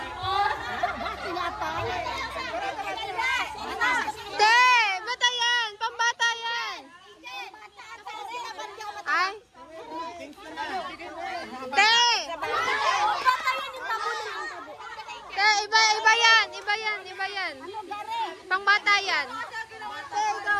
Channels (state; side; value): identical; both; correlation 1.00